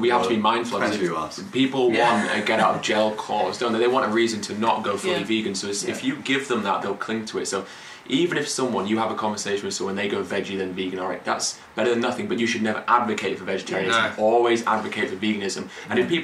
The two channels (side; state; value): both; identical; correlation 1.00